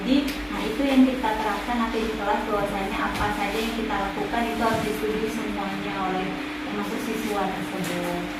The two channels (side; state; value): both; identical; correlation 1.00